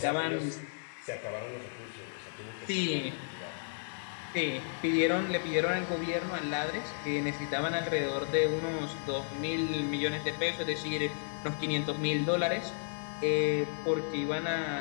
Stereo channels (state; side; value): silent; right; digital silence